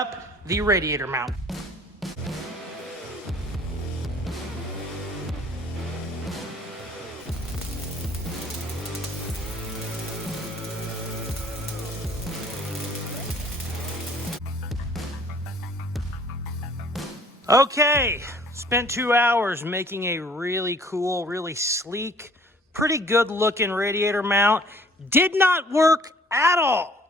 the radiator mount. Okay, spent 2 hours making a really cool, really sleek, pretty good looking radiator mount. Did not work at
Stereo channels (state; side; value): normal; both; correlation 0.55